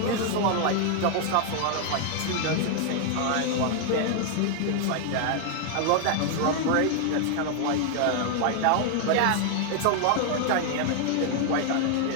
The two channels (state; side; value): different; both; correlation 0.00